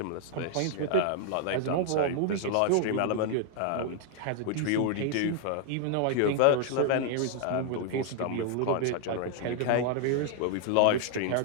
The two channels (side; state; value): both; different; correlation 0.00